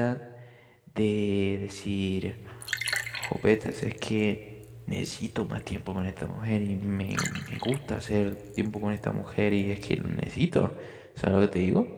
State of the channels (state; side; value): identical; both; correlation 1.00